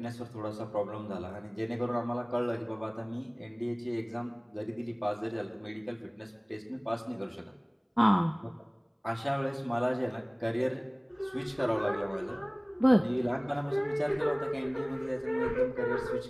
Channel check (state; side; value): identical; both; correlation 1.00